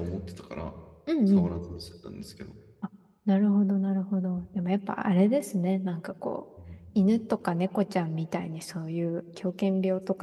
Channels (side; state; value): both; identical; correlation 1.00